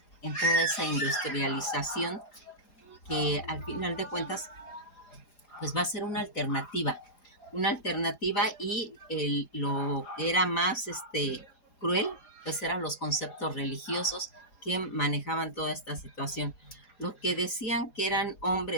en toda esa industrialización que al final de cuentas pues va a ser una alternativa y lo que era más cruel pues eran los conceptos religiosos que manejaban toda esta situación. Los que decían que eran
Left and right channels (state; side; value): late; right; 4.9 ms